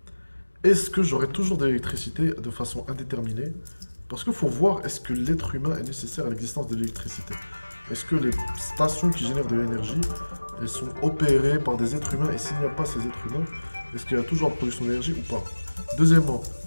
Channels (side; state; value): both; inverted; correlation -1.00